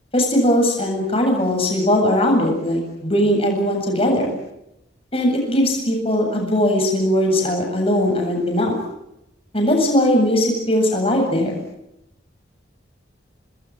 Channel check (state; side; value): normal; both; correlation 0.46